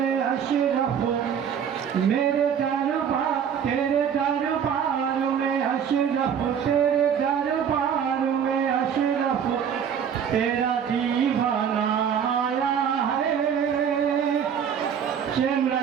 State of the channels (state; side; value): quieter; left; 8.0 dB